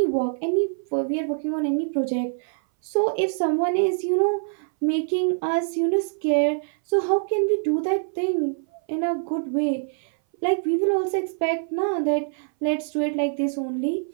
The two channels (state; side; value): silent; left; 60 dB below the other